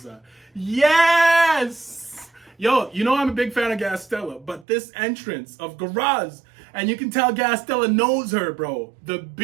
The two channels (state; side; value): drops out; left; at 4.7 s